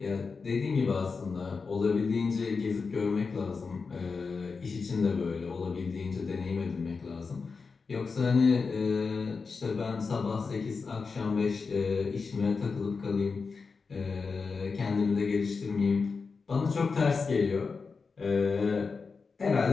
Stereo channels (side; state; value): right; quieter; 4.8 dB